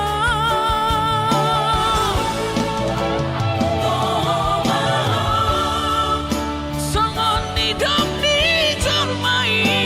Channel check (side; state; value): both; identical; correlation 1.00